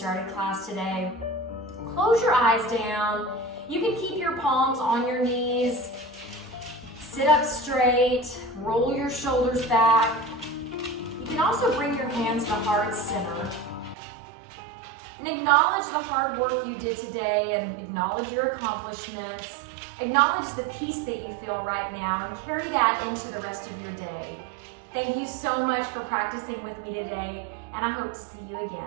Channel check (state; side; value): drops out; left; at 14.0 s